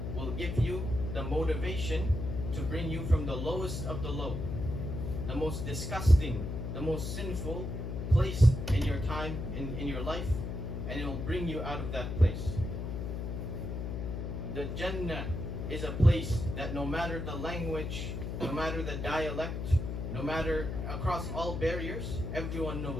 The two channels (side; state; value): left; noise; hum, 4 dB below the sound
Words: will give you the motivation to bring you from the lowest of the low, the most disgusting, the most sinful place in your time, in your life, and it will bring you out of that place. The Jannah is a place that no matter the language, no matter the dialect, no matter across all barriers, everyone